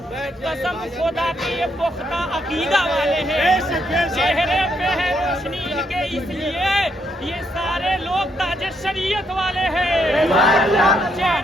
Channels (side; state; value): both; normal; correlation 0.75